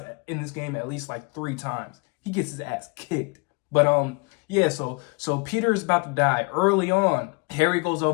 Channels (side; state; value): right; quieter; 29.5 dB